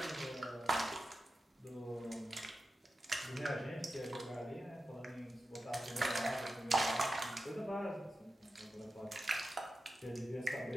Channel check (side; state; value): both; normal; correlation 0.91